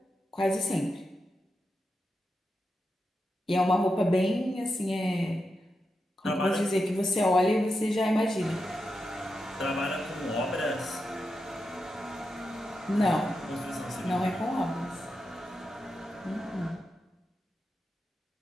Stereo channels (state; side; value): normal; both; correlation 0.87